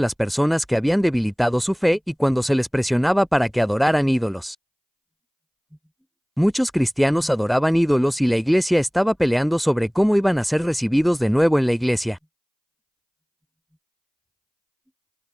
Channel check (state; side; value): identical; both; correlation 1.00